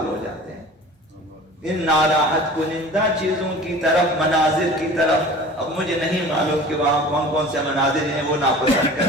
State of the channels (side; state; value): both; normal; correlation 0.41